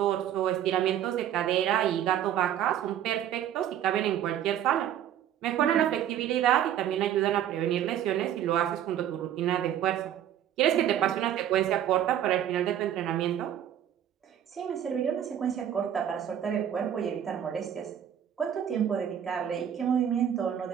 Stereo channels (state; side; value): quieter; left; 10.4 dB